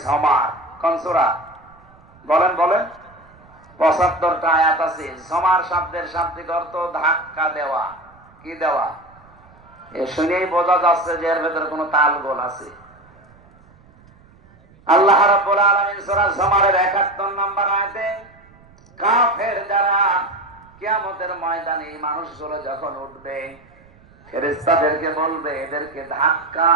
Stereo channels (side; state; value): right; noise; rumble, 27 dB below the sound